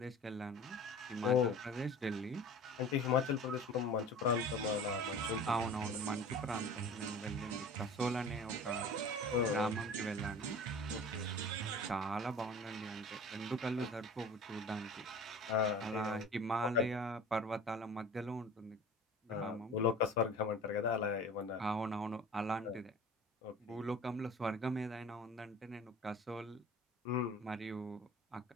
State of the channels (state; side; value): normal; both; correlation 0.41